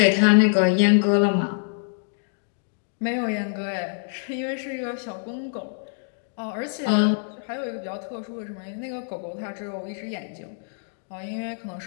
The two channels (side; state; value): right; silent; digital silence